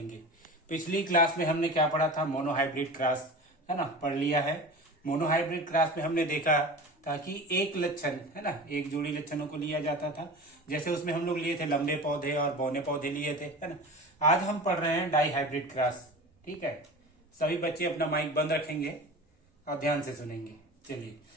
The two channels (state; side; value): normal; both; correlation 0.34